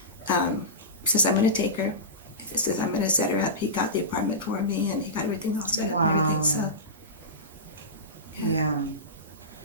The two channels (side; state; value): both; normal; correlation -0.17